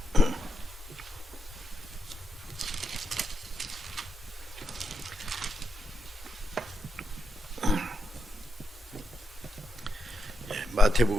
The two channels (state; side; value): normal; both; correlation 0.84